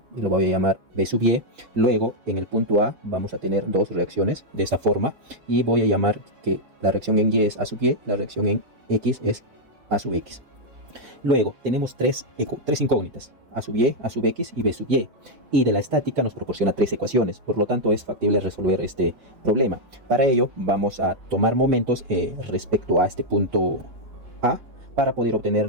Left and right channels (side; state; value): left; late; 6.3 ms